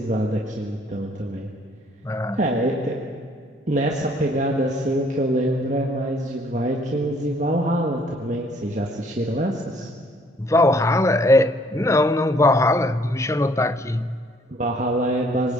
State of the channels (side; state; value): both; normal; correlation 0.62